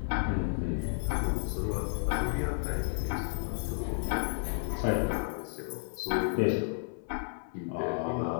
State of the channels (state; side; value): silent; right; 56 dB below the other